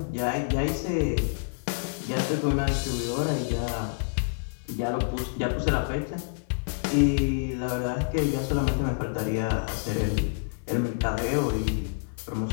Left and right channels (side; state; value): right; silent; 60 dB below the other